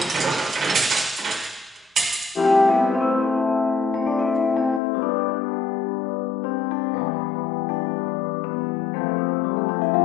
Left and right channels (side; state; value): right; drops out; at 4.8 s